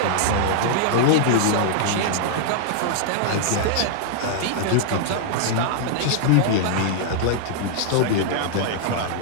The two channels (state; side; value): different; both; correlation -0.01